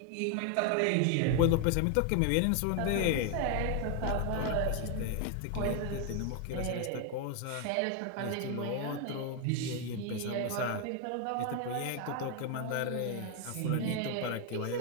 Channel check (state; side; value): different; both; correlation 0.01